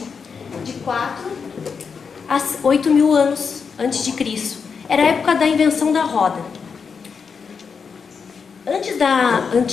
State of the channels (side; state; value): right; quieter; 5.8 dB